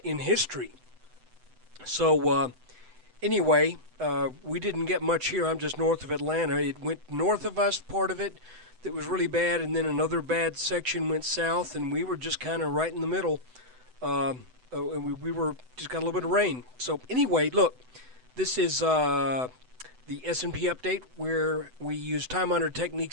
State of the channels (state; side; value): late; left; 7.9 ms